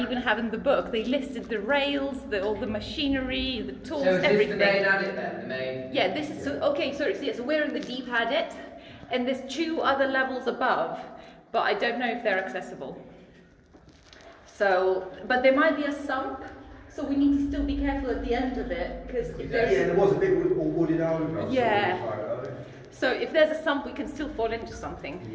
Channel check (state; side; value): identical; both; correlation 1.00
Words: have in the book, they listed the rails, all the machinery, the tools, So is everything. this the main adit then? The main? Yeah, this is, so, okay, so we're in the deep adit, and there's 2 other levels above, but I don't know if they're accessible. So, but there might be a sump. So we need to still be careful at the end of it, because if there's... Yeah, there was a bit all wooded over. Yeah. So if there's a sump, we can still fall into something,